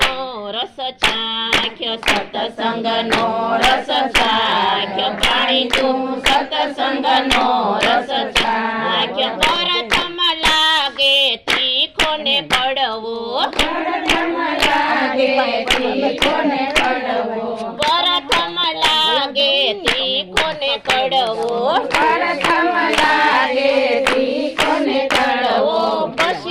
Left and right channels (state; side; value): identical; both; correlation 1.00